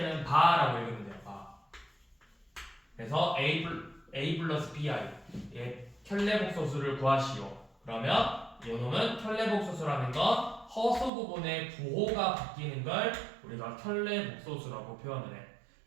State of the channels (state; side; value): drops out; left; at 11.1 s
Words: 바라고 읽으면 돼요. 바. 그래서 a 플러스 bi의 켤레복소수를 구하시오. 그러면 요놈은 켤레복소수라는 건 허수 부분의 부호가 바뀌는 걸 우리가 켤레복소수라고 표현을 해.